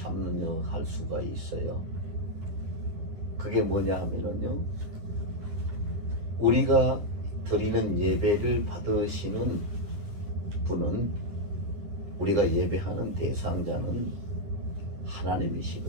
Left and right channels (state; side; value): late; left; 9.8 ms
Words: 수가 있어요. 그게 뭐냐 하면요, 우리가 드리는 예배를 받으시는 분은, 우리가 예배하는 대상자는